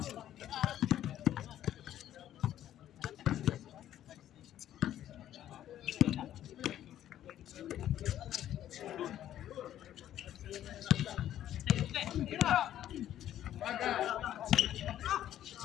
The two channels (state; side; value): quieter; right; 11.8 dB